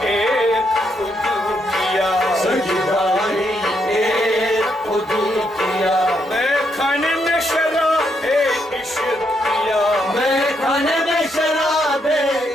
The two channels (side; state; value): both; normal; correlation 0.77